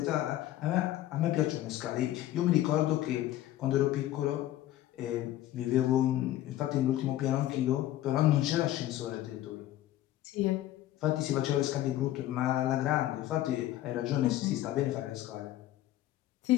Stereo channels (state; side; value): quieter; right; 13.9 dB